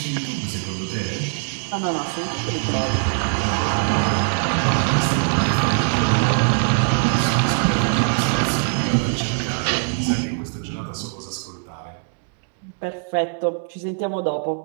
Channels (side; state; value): left; silent; digital silence